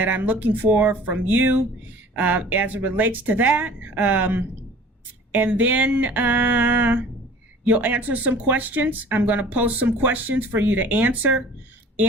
I'm looking for from you as it relates to that. And then you'll answer some questions. I'm going to post some questions for you to answer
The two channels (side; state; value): both; normal; correlation 0.47